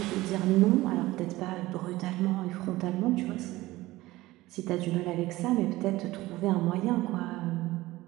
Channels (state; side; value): quieter; left; 18.2 dB